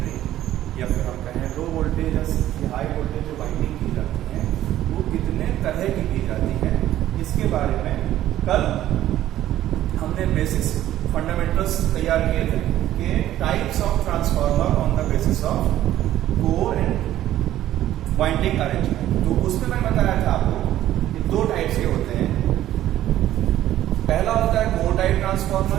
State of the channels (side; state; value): left; quieter; 13.1 dB